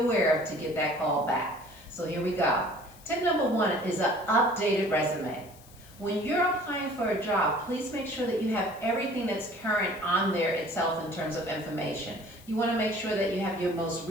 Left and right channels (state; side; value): noise; left; hiss, 23 dB below the sound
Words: of to get that call back? So here we go. Tip number one is an updated resume. When you're applying for a job, please make sure that you have everything that's current on there itself in terms of information. You want to make sure that you have your most